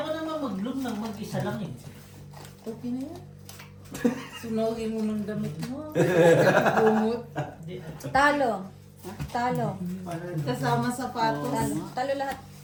ko naman mag-bloom ng mag-isa lang eh. Okay na yan. Sunogin mo ng damit mo. Bumot. Di- Talo. Talo. Kasama sapatos. Talo. Talo lahat.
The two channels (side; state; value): both; identical; correlation 1.00